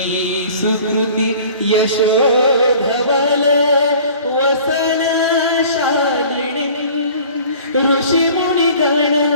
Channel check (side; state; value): both; inverted; correlation -0.47